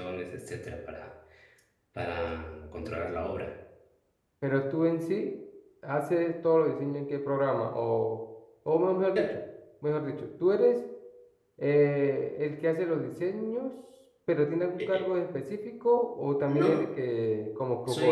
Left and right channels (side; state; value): both; identical; correlation 1.00